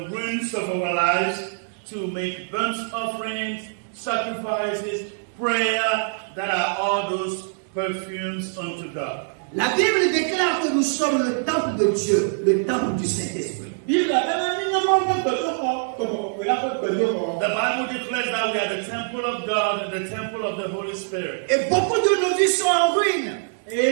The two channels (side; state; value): left; silent; digital silence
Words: ruins of our lives to make burnt offerings, sacrifices, prayer, that are all those perfumes unto God. La Bible déclare que nous sommes le temple de Dieu, le temple du Saint-Esprit. The Bible declares that we are the temple of God and the temple of the Holy Spirit. Et beaucoup de nos vies sont en ruine.